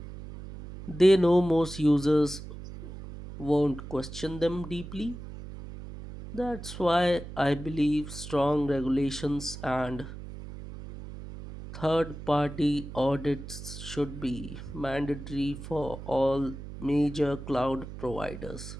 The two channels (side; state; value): right; noise; hum, 11 dB below the sound